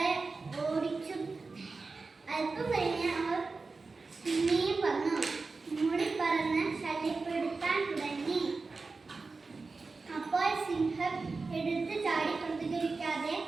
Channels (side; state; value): left; quieter; 4.0 dB